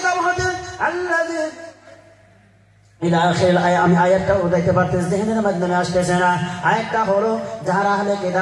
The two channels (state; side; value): identical; both; correlation 1.00